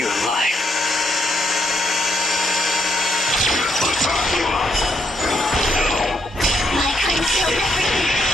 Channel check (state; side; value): normal; both; correlation 0.76